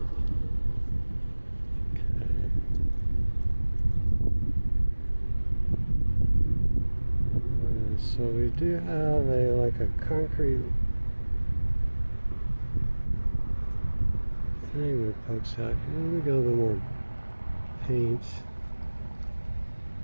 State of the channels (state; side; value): inverted; both; correlation -1.00